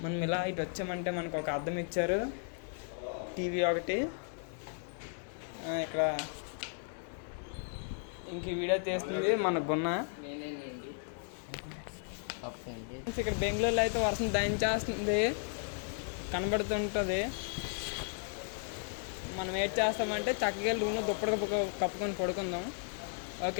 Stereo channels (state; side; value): silent; right; 54 dB below the other